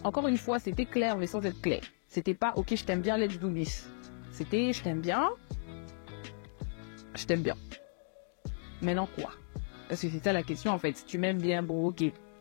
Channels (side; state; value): right; silent; digital silence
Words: encore une fois, c'était clair mais sans être clair. C'était pas ok, je t'aime bien, let's do this. C'était je t'aime bien. Maintenant quoi? Parce que c'est ça la question en fait. Si tu m'aimes bien, bon ok,